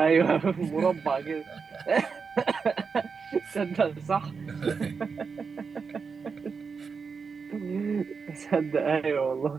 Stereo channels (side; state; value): left; quieter; 5.4 dB